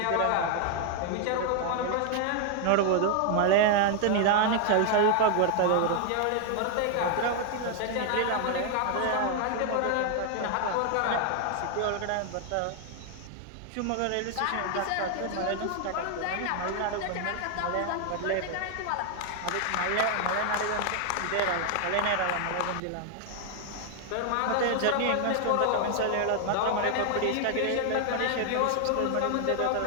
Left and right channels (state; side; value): different; both; correlation 0.00